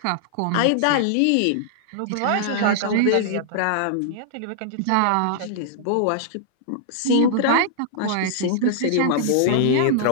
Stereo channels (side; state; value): both; different; correlation -0.01